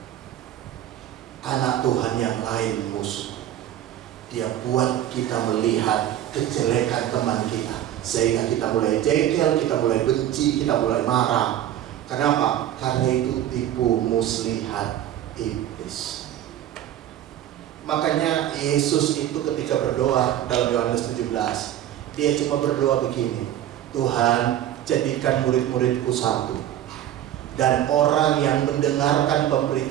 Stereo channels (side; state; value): left; quieter; 11.9 dB